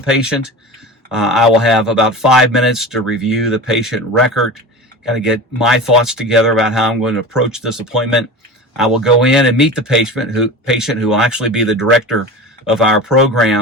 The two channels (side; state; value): both; normal; correlation 0.32